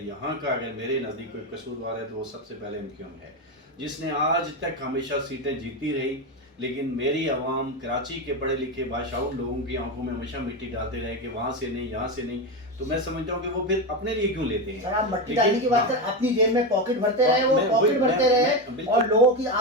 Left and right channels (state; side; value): normal; both; correlation 0.14